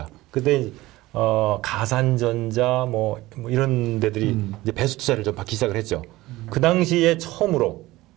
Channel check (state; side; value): quieter; left; 18.3 dB